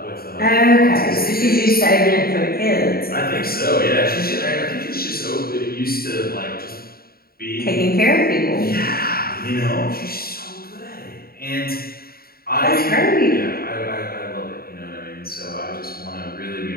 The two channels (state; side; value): late; right; 0.44 ms